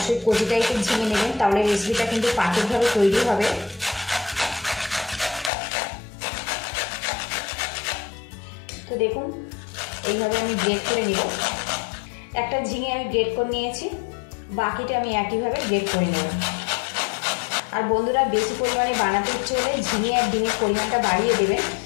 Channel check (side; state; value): right; drops out; at 5.5 s